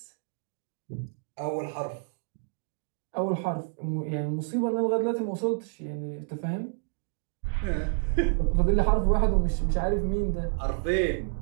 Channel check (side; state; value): left; silent; 59 dB below the other